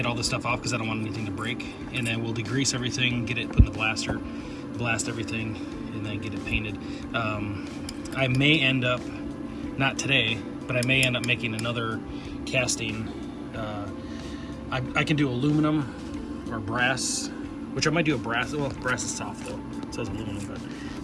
all this stuff off because I don't want anything to break. And then we'll degrease everything, get it put in the blaster, blast everything, and then get it painted. I may end up, not today, but I may end up making another casting. I can do aluminum or brass, which I might do a brass. Well, brass is soft though. It says aluminum,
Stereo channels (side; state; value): both; identical; correlation 1.00